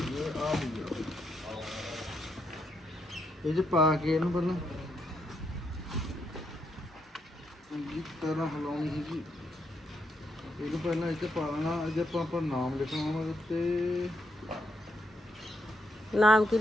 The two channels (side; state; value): both; normal; correlation 0.79